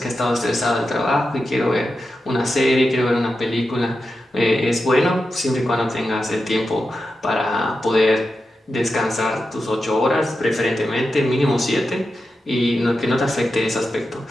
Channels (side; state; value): both; normal; correlation 0.90